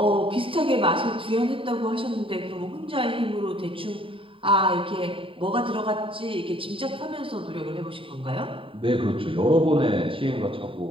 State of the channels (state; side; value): late; left; 0.25 ms